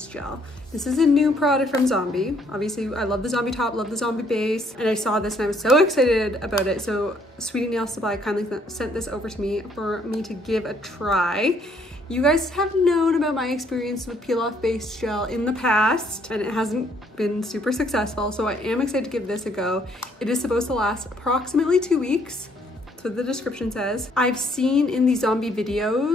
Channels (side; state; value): both; normal; correlation 0.66